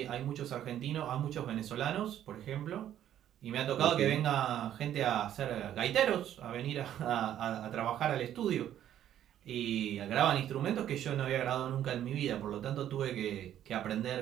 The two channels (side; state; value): left; quieter; 11.1 dB